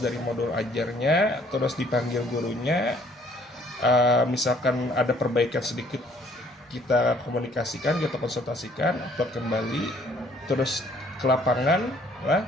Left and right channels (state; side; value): normal; both; correlation 0.61